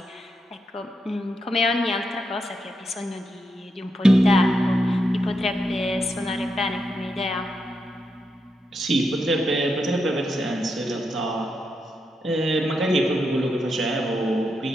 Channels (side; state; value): both; normal; correlation 0.84